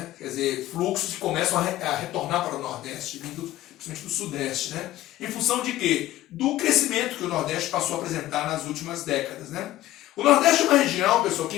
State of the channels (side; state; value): right; quieter; 15.0 dB